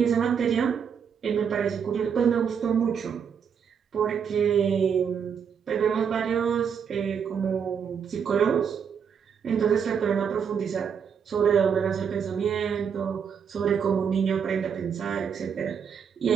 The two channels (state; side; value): quieter; left; 7.2 dB